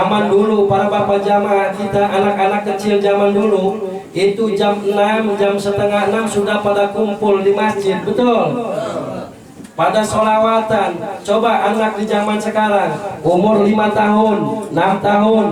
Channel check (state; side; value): identical; both; correlation 1.00